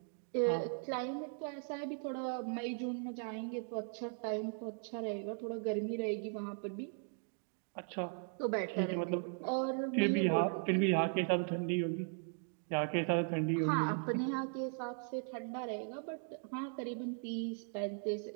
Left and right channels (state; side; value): silent; left; 52 dB below the other